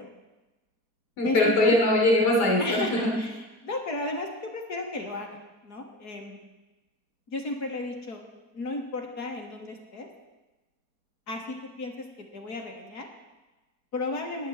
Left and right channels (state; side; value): late; right; 4.2 ms